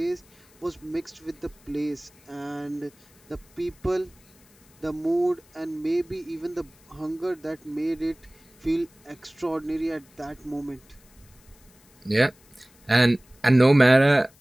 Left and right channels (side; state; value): left; noise; hiss, 29 dB below the sound